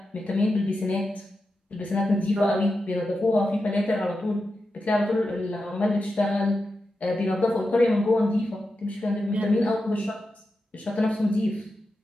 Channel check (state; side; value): normal; both; correlation 0.90